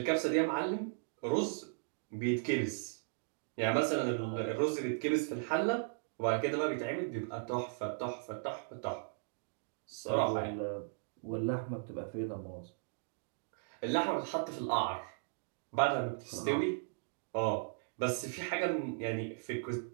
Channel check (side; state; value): left; silent; digital silence